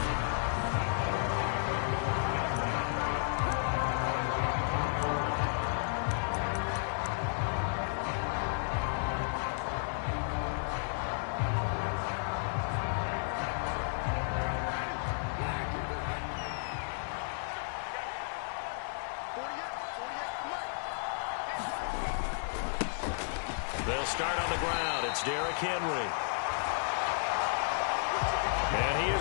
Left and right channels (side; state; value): right; silent; digital silence